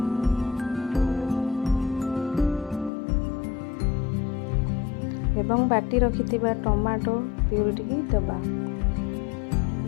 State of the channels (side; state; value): right; drops out; at 2.9 s